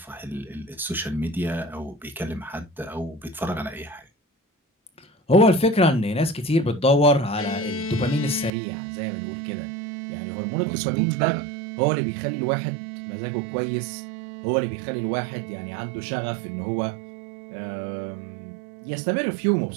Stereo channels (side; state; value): left; drops out; at 8.5 s